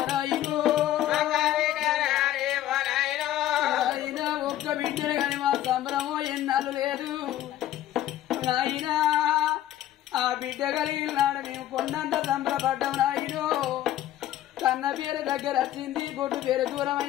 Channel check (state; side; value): quieter; right; 12.9 dB